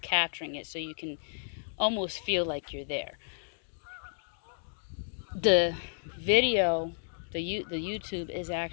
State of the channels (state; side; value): silent; right; digital silence